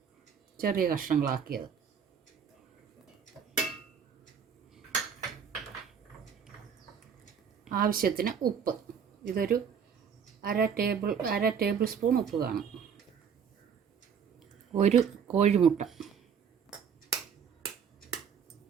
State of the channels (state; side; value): quieter; left; 7.2 dB